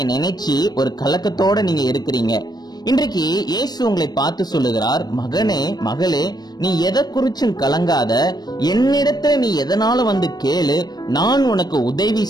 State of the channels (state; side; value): late; right; 0.19 ms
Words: நினைச்சு ஒரு கலக்கத்தோட நீங்க இருக்கிறீங்க. இன்றைக்கு இயேசு உங்களை பார்த்து சொல்லுகிறார், மகனே மகளே, நீ எதை குறிச்சும் கலங்காத, என்னிடத்துல நீ எதனால வந்து கேளு, நான் உனக்கு உதவி